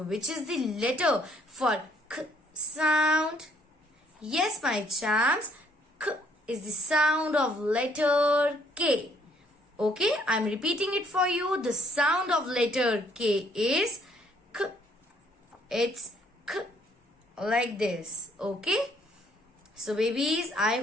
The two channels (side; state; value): both; normal; correlation 0.66